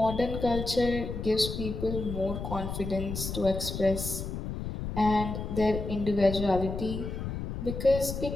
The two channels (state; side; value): noise; left; rumble, 5 dB below the sound